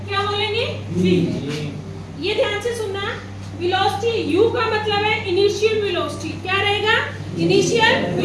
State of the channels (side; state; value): both; identical; correlation 1.00